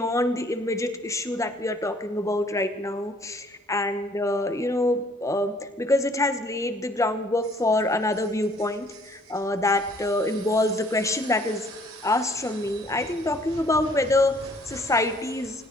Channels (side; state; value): both; normal; correlation 0.60